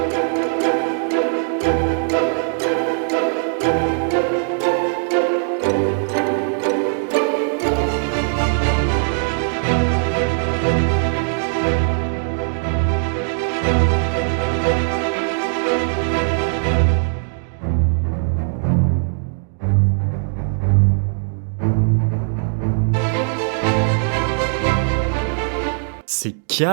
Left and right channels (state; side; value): silent; left; 66 dB below the other